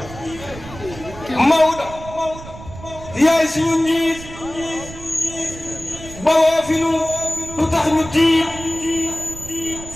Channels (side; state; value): right; noise; rumble, 14 dB below the sound